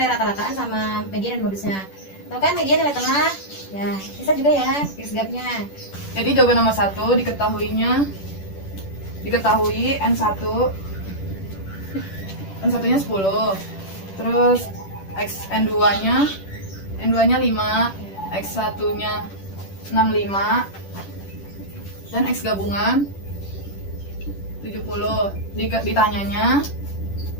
rata-rataan sama media dan modusnya. Tahu kan media nilai tengah? Ya, bisa juga ya, X gapnya. Jadi jawaban nomor 1 diketahui N1 nya 10. Terus N2 nya 5, X1 nya 65 dan X gabungan 70. Ditanyanya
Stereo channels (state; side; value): late; right; 10 ms